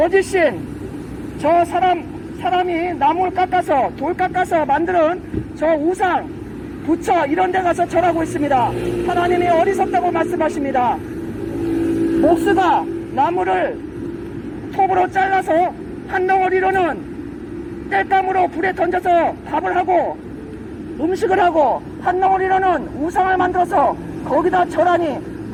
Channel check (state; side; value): identical; both; correlation 1.00